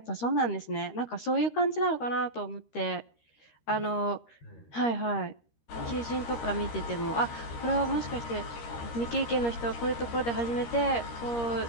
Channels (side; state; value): right; late; 13 ms